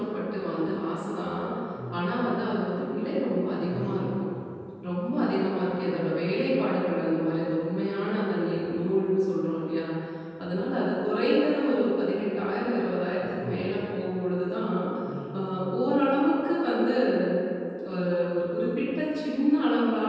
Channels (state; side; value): identical; both; correlation 1.00